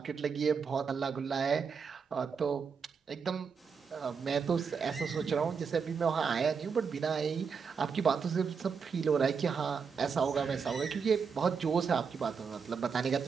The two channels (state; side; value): quieter; left; 5.9 dB